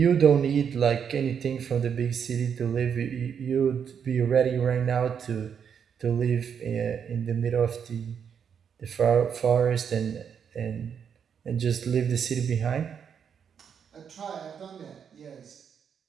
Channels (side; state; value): left; quieter; 7.5 dB